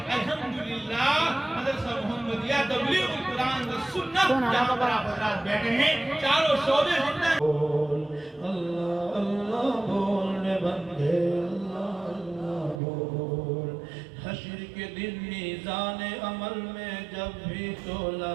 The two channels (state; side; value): drops out; left; at 12.8 s